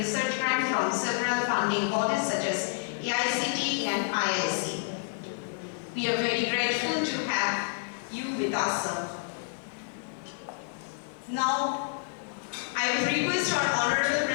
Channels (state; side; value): silent; right; 58 dB below the other